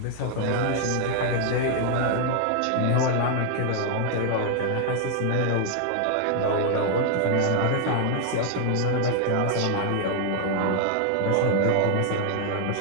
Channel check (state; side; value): different; both; correlation 0.00